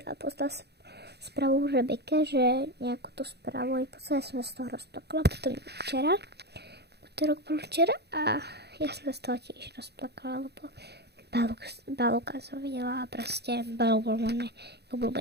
a poslal správu Rebeke, že nejakú tú správu i poslal, som sa z toho rozplakala. Potom včera, útorok bol včera a ja som sa z toho tiež rozplakala, lebo Balúka som videla a proste Balúk bol môj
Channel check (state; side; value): late; left; 0.48 ms